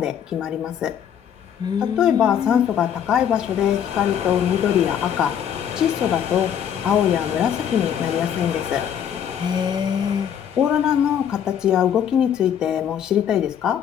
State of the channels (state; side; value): quieter; right; 8.9 dB